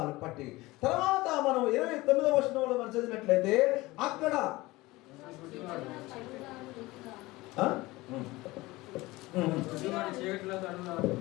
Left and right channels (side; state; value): right; quieter; 20.4 dB